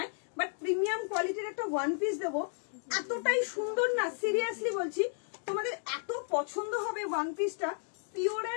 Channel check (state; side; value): silent; right; 56 dB below the other